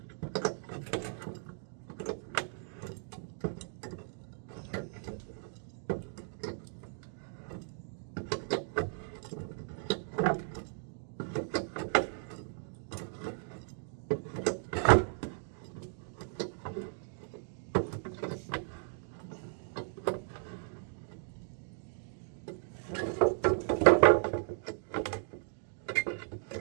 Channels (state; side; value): silent; left; digital silence